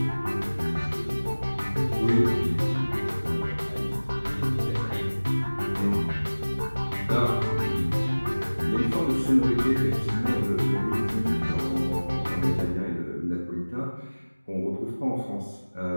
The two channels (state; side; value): inverted; both; correlation -1.00